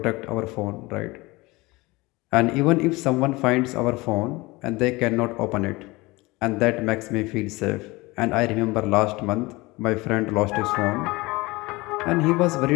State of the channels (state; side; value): quieter; right; 22.5 dB